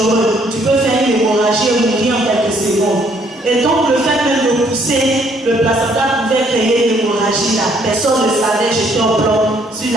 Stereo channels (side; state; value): both; normal; correlation 0.66